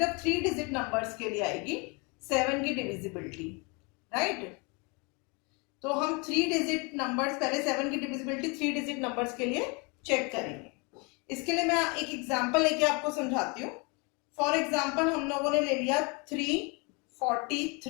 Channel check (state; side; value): quieter; right; 30.7 dB